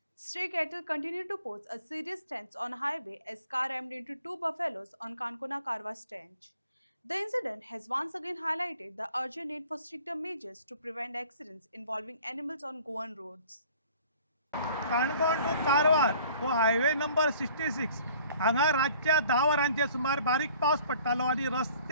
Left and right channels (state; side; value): inverted; both; correlation -0.52